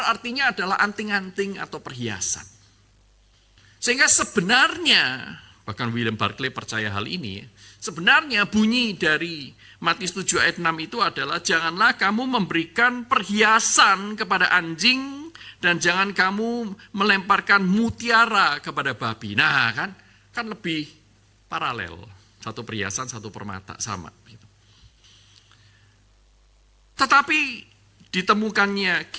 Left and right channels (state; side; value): identical; both; correlation 1.00